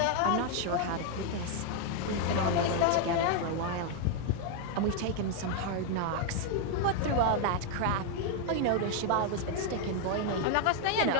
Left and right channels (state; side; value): different; both; correlation 0.00